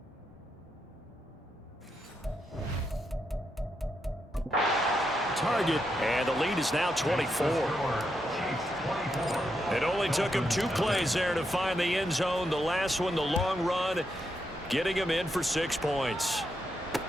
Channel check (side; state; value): both; normal; correlation 0.82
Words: target, and the lead is now 24. It only took him 2 plays there to find the end zone. The last one, the long run, getting him in for 6 points.